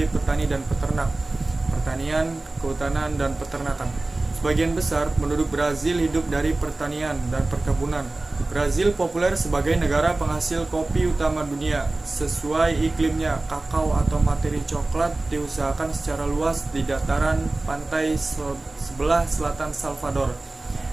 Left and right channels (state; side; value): quieter; left; 3.0 dB